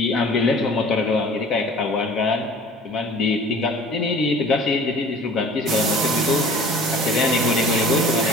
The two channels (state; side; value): normal; both; correlation 0.46